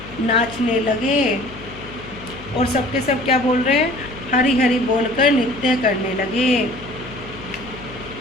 नाचने लगे, और सबके सब क्या बोल रहे हैं, हरि हरि बोलकर नृत्य करने लगे।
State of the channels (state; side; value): noise; left; hum, 16 dB below the sound